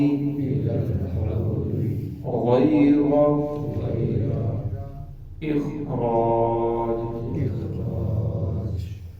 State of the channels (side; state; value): both; identical; correlation 1.00